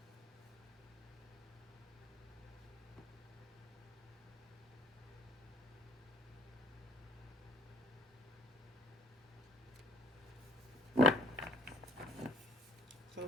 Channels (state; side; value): normal; both; correlation 0.55